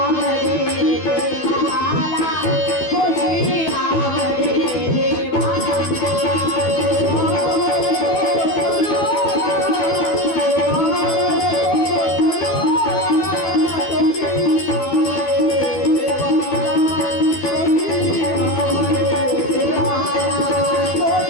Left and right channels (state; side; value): late; right; 12 ms